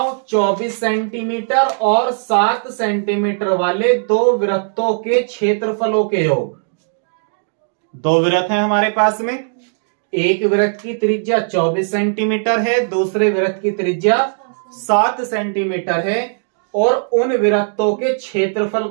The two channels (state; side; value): silent; left; digital silence